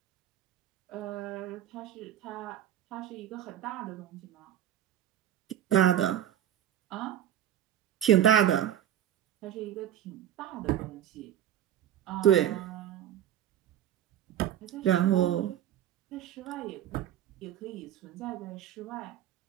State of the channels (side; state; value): left; quieter; 11.2 dB